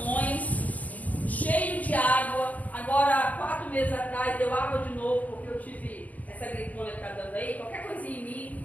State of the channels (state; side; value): late; right; 0.075 ms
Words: cheio de água. Agora, 4 meses atrás, deu água de novo, porque eu tive essa gripona que está dando aí. Qualquer coisinha em